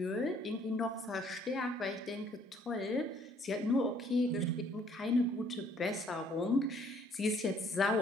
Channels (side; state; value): both; normal; correlation 0.62